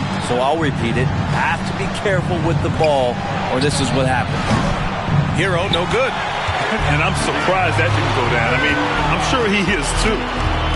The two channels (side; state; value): both; identical; correlation 1.00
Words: so I'll repeat it. Have to be careful with the ball, or this is what happens. Hero, no good. And I'm surprised that didn't go down. I mean, I'm sure he is too.